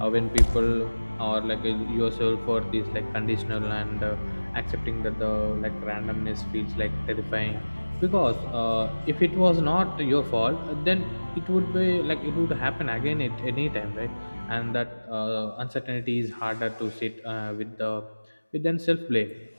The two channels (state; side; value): inverted; both; correlation -1.00